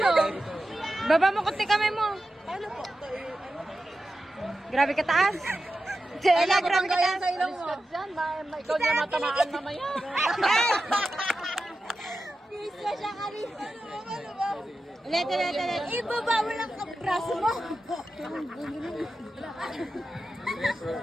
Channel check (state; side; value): normal; both; correlation 0.92